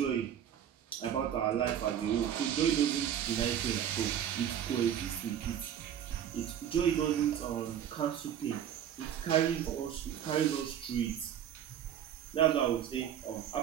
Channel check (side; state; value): left; quieter; 9.7 dB